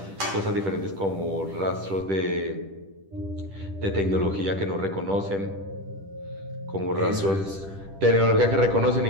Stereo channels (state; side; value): late; left; 10 ms